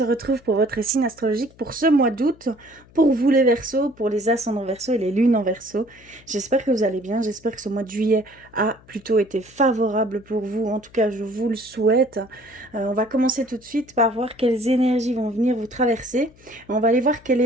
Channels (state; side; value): noise; left; hum, 26 dB below the sound